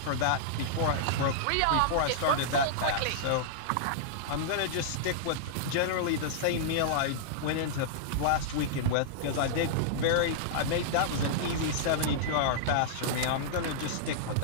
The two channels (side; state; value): both; different; correlation -0.02